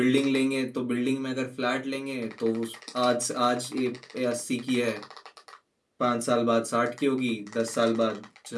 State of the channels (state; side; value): identical; both; correlation 1.00